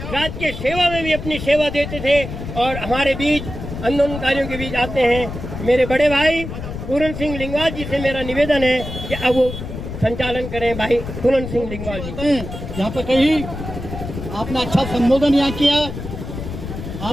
के सेवा में भी अपनी सेवा देते थे और हमारे बीच आंदोलनकारियों के बीच आते हैं। मेरे बड़े भाई पूरन सिंह लिंगवाल जी से मेरा निवेदन है कि अब वो संचालन करें। भाई पूरन सिंह लिंगवाल जी। यहाँ पर कहीं आपने अच्छा संबोधन यहाँ किया।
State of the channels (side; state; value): left; noise; rumble, 8 dB below the sound